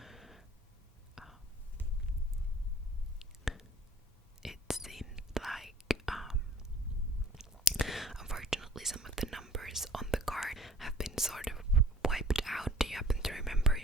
It seems like unfortunately some of the numbers on the card have been sort of wiped out. Do you happen to remember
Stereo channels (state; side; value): normal; both; correlation 0.50